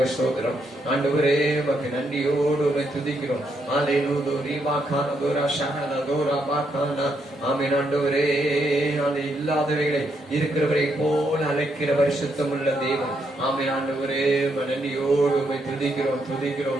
சோத்திரம். ஆண்டவரே உமக்கு நன்றியோடு துதிக்கிறோம். அல்லேலூயா ரீமா கான தோரா ஷனல தோரா பாகானா. ஆமென். ஆண்டவரே அது இல்லாதவைகளை இருக்கிறவரை போல அழைக்கிற பரிசுத்தம் உள்ள தேவன். ஆமென். ஆண்டவரே நன்றியோடு துதிக்கிறோம்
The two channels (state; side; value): normal; both; correlation 0.77